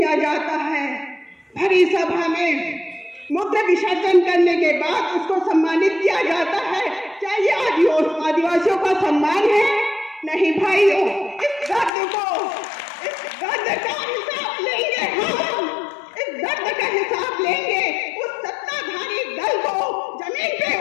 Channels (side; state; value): right; drops out; at 11.9 s